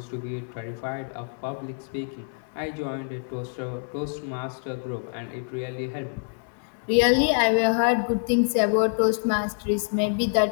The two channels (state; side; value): silent; right; 61 dB below the other